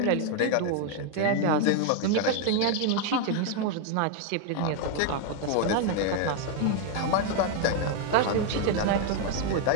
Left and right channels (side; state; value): both; different; correlation 0.00